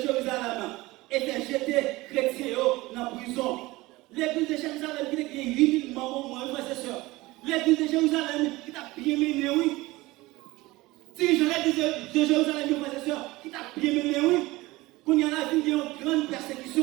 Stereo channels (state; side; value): quieter; left; 20.2 dB